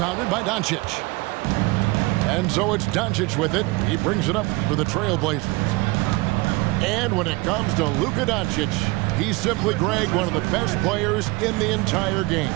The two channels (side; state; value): left; quieter; 23.2 dB